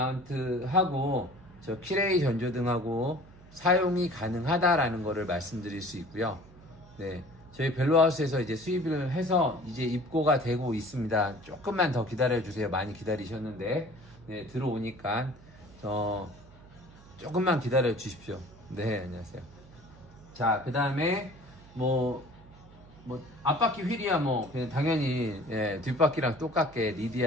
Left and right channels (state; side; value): noise; right; hum, 22 dB below the sound